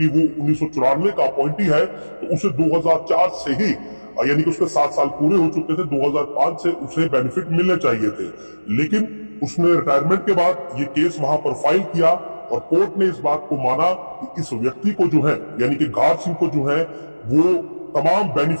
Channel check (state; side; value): inverted; both; correlation -1.00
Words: वो 1994 का अपॉइंटी है तो उसे 2004 से ही यानी कि उसके 7 साल पूरे हो चुके थे, 2005 से उसे बेनिफिट मिलने चाहिए थे। लेकिन उसने रिटायरमेंट के बाद ये केस वहां पर फाइल किया और कोर्ट ने इस बात को माना कि इस व्यक्ति को जो है यानी कि घार सिंह को जो है वो तमाम